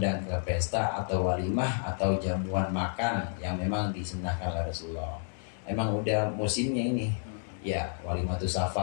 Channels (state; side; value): silent; right; digital silence